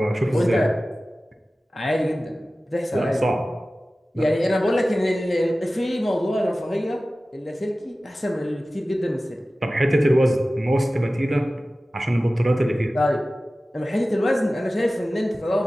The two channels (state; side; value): normal; both; correlation 0.96